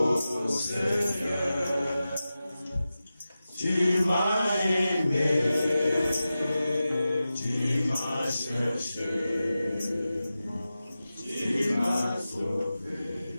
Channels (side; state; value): both; inverted; correlation -0.94